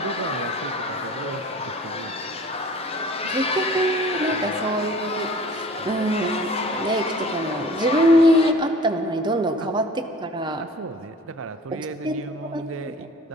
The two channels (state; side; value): normal; both; correlation 0.46